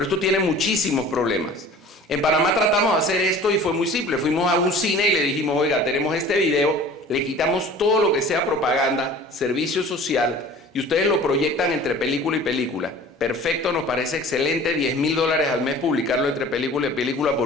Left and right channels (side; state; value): both; normal; correlation 0.44